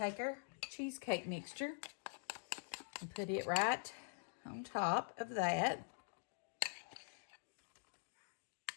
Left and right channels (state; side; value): silent; right; digital silence